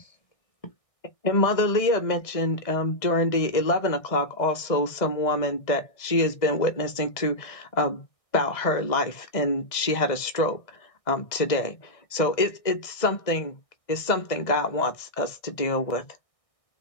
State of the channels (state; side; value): late; right; 2.0 ms